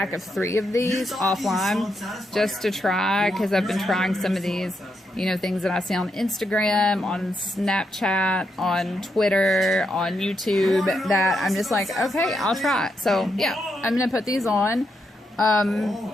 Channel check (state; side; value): normal; both; correlation 0.81